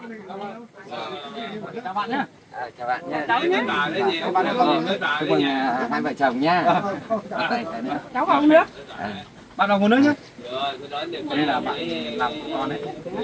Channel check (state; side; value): identical; both; correlation 1.00